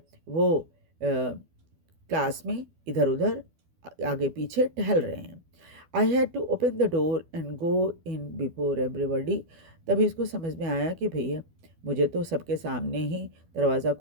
वो क्लास में इधर उधर आगे पीछे टहल रहे हैं। I had to open the door and go in before everybody. तभी इसको समझ में आया कि भैया मुझे तो सबके सामने ही दरवाज़ा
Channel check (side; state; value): left; late; 12 ms